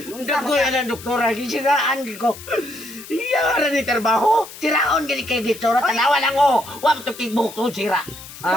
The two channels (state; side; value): noise; left; hiss, 15 dB below the sound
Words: Dago yan ang doktora. Gisiraan ko. Iyara ni trabaho. Siraon gani kay dito. Tanawa lang o. Huwag to kigbukto sira.